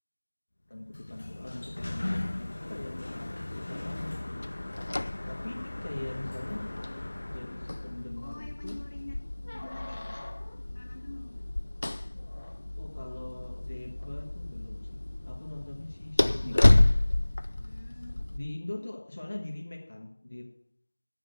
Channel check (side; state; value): both; inverted; correlation -1.00